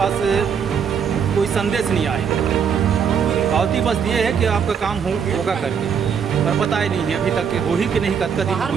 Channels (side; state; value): left; quieter; 7.1 dB